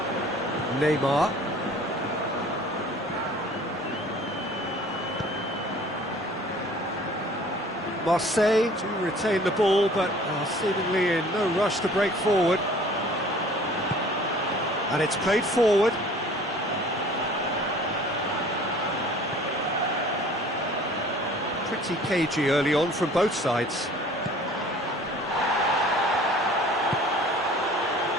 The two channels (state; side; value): normal; both; correlation 0.49